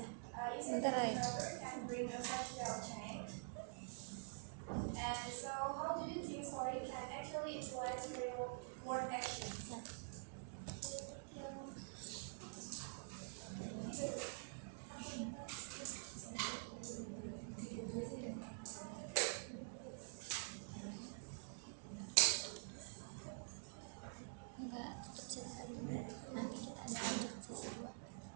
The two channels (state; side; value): silent; left; digital silence